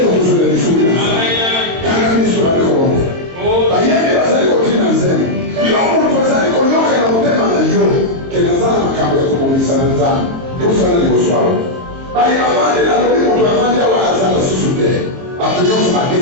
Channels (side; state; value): left; late; 22 ms